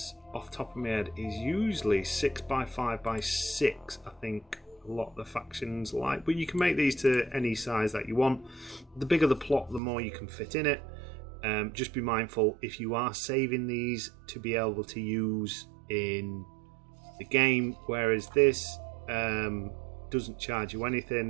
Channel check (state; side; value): drops out; left; at 9.8 s